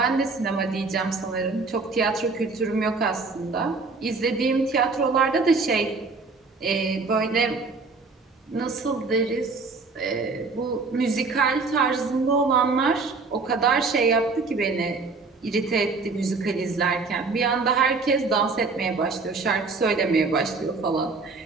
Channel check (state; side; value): quieter; left; 4.1 dB